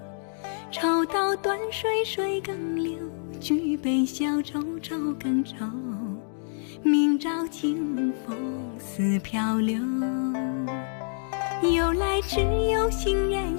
抽刀断水，水更流；举杯消愁，愁更愁。明朝清风似漂流。由来只有行人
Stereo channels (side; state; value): right; silent; digital silence